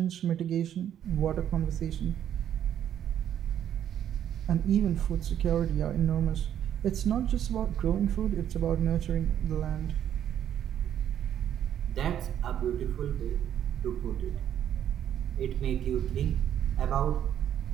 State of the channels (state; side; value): quieter; left; 10.2 dB